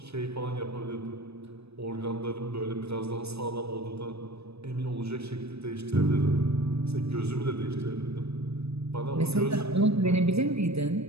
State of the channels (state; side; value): late; left; 0.79 ms